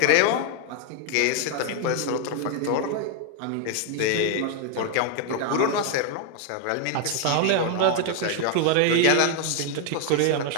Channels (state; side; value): different; both; correlation 0.01